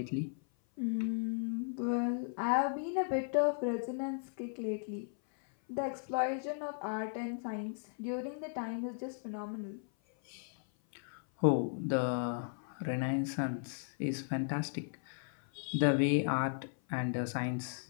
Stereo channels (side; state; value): right; silent; 54 dB below the other